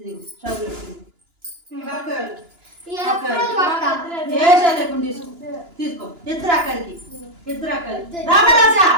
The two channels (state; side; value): late; left; 2.9 ms